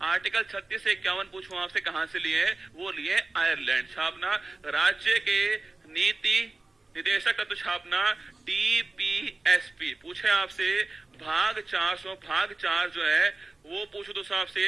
आर्टिकल 36 से 51 पूछूं आपसे कहाँ से लिए, वो लिए आयरलैंड। छापना राज्य के नीति निदेशक तत्व छापना डीपीएसपी। पूछे आपसे भाग 4 जो है वो पूछो दोस्तों आपसे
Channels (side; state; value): left; quieter; 3.3 dB